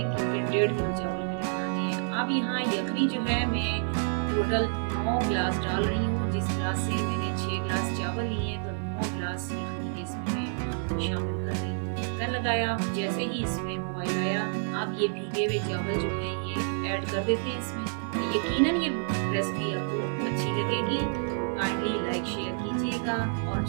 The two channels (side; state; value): left; silent; 59 dB below the other